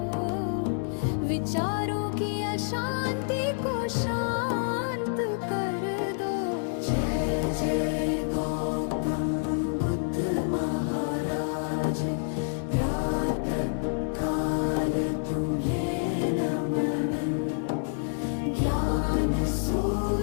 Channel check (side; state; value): right; silent; 59 dB below the other